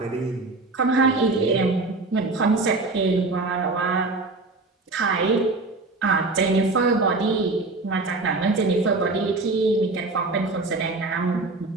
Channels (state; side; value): quieter; left; 3.4 dB